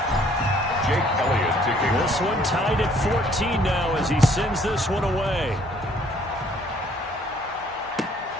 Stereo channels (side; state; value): both; normal; correlation 0.61